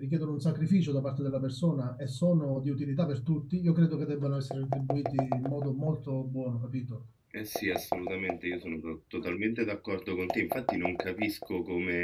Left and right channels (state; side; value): identical; both; correlation 1.00